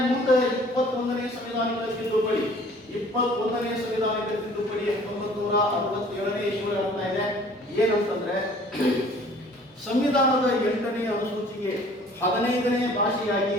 ಮುಂದೆ 21ನೇ ಸಂವಿಧಾನಿಕ ತಿದ್ದುಪಡಿ, 21ನೇ ಸಂವಿಧಾನಿಕ ತಿದ್ದುಪಡಿ 1967ನೇ ಇಸ್ವಿಯೊಳಗೆ ಆಗ್ತಾ ಇದೆ. ಏನಂತಂದ್ರೆ ಸಂವಿಧಾನದ 8ನೇ ಅನುಸೂಚಿಗೆ 15ನೇ ಭಾಷೆಯಾಗಿ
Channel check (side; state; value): both; normal; correlation 0.52